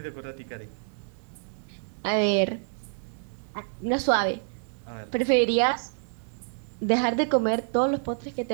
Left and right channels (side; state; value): left; silent; digital silence